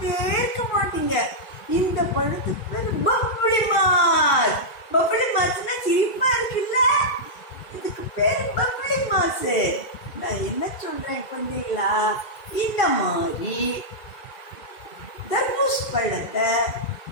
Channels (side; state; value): right; late; 2.4 ms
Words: இருக்க மாட்டீங்க. இந்த பழத்துக்கு பேர் பப்ளி மாஸ். பப்ளி மாஸ்னா சிரிப்பா இருக்குல்ல, இதுக்கு பேர் பப்ளி மாஸ். நான் என்ன சொல்றேன் கொஞ்சங்களா? இந்த மாதிரி தர்பூஸ் பழத்தை